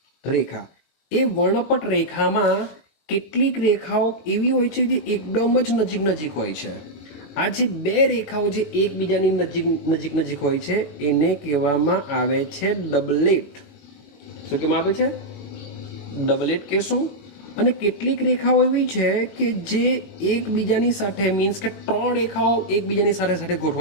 રેખા, એ વર્ણપટ રેખામાં કેટલીક રેખાઓ એવી હોય છે જે એકદમ જ નજીક હોય છે. આ જે બે રેખાઓ જે એકબીજાની નજીક હોય છે એને કહેવામાં આવે છે ડબલેટ. શું કહેવામાં આવે છે? ડબલેટ કહેશું. અને કેટલીક રેખાઓ એવી છે કે જે એકબીજાની સાથે, મીન્સ કે 3 રેખાઓ એકબીજાની સાથે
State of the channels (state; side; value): late; right; 21 ms